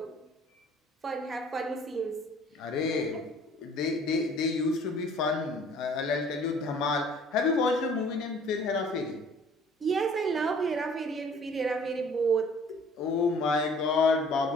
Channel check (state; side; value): normal; both; correlation 0.53